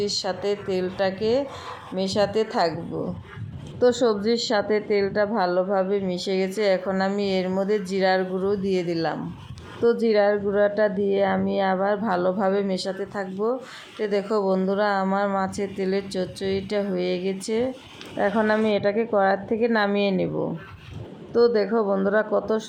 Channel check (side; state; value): both; identical; correlation 1.00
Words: সাথে তেলটাকে মেশাতে থাকবো। তো সবজির সাথে তেলটা ভালোভাবে মিশে গেছে, এখন আমি এর মধ্যে জিরার গুঁড়ো দিয়ে দিলাম। তো জিরার গুঁড়োটা দিয়ে আমি আবার ভালোভাবে মেশাতে থাকবো। তো দেখো বন্ধুরা, আমার মাছের তেলের চচ্চড়িটা হয়ে গেছে। এখন আমি এটাকে কড়াই থেকে নামিয়ে নেব। তো দেখো বন্ধুরা, কত